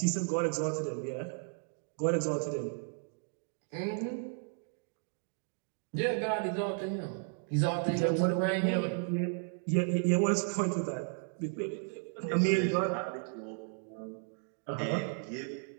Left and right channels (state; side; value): silent; left; 55 dB below the other